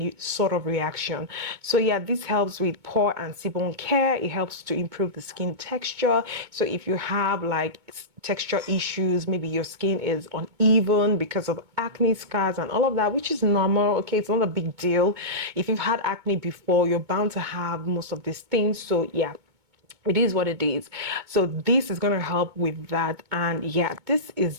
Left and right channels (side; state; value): left; late; 2.2 ms